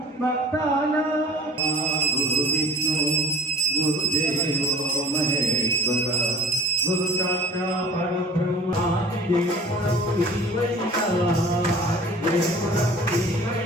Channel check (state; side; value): normal; both; correlation 0.44